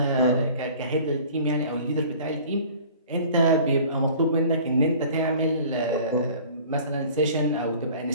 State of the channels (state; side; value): inverted; both; correlation -0.46